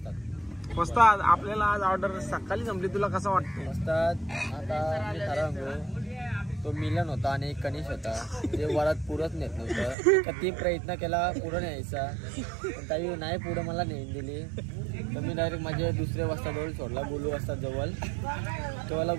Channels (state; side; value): drops out; left; at 10.0 s